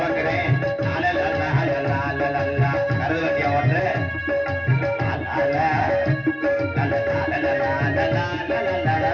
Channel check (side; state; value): both; identical; correlation 1.00